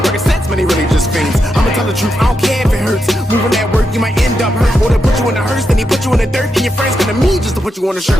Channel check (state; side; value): normal; both; correlation 0.85